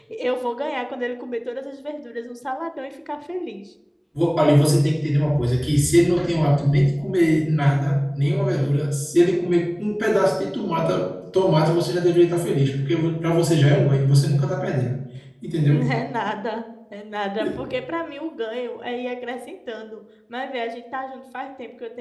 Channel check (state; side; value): identical; both; correlation 1.00